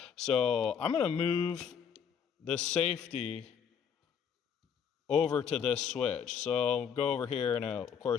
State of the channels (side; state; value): right; quieter; 7.6 dB